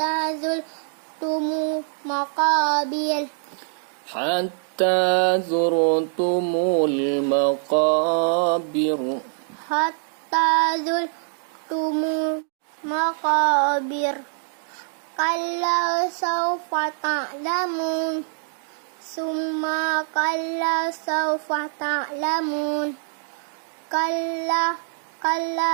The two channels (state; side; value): silent; left; digital silence